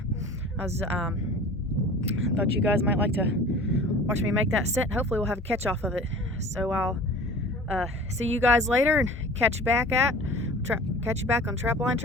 I was thought you guys might like to watch me make that set, and hopefully we'll have a catch off of it. So I'll see you guys later and catch you back on Trapline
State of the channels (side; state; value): both; normal; correlation 0.42